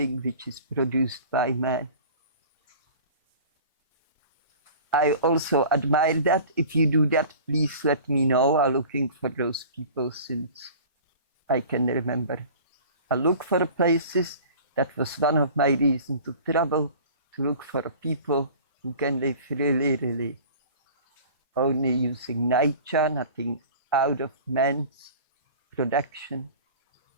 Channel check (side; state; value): both; inverted; correlation -0.42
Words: which is produced by man. I also admire that. If you do that, please let me know. I'm looking for those people since I can remember. I look for places. That was one of my reasons to travel, to look for people who can live really, really only using nature, nothing out of man's production.